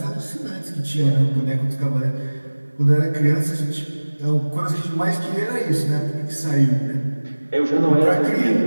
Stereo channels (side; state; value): both; inverted; correlation -1.00